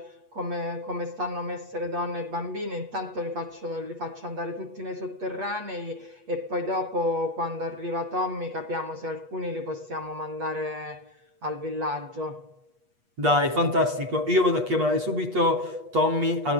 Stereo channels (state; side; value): late; left; 8.3 ms